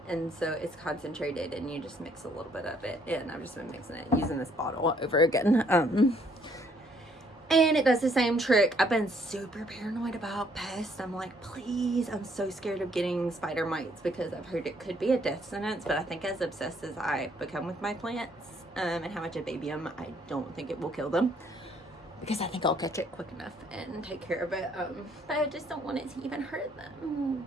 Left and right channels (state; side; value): normal; both; correlation 0.65